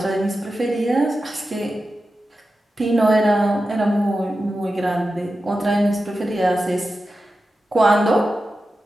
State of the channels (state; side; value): normal; both; correlation 0.92